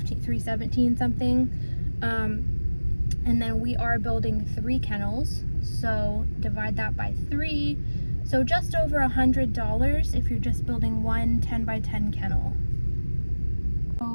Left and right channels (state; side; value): inverted; both; correlation -1.00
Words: something, and then we are building 3 kennels, so divide that by 3, so just over $100 if you're just building one 10 by 10 kennel.